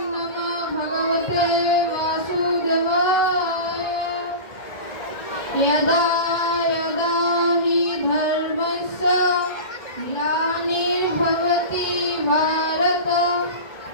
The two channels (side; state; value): right; late; 1.8 ms